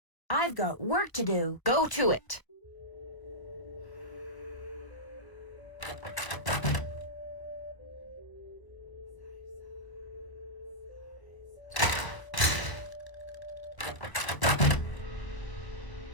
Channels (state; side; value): late; right; 1.0 ms